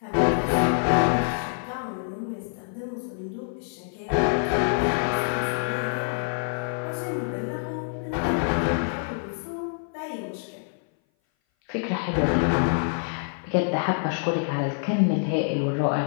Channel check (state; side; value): silent; right; 57 dB below the other